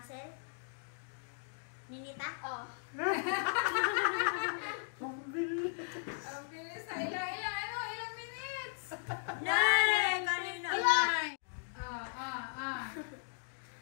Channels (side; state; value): right; silent; digital silence